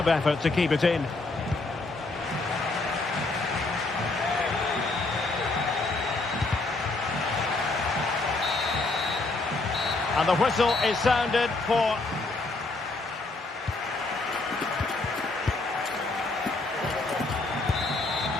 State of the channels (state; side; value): quieter; right; 3.3 dB